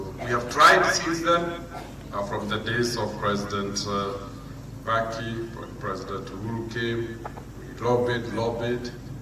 we have tried since then, from the days of President Baki, when President Uhuru came, we lobbied,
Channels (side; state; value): both; identical; correlation 1.00